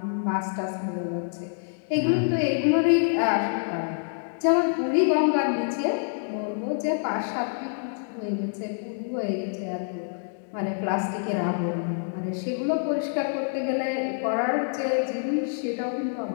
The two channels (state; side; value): silent; right; digital silence